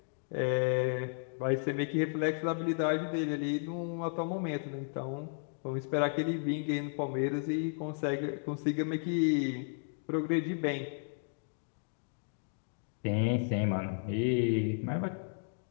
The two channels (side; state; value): right; silent; digital silence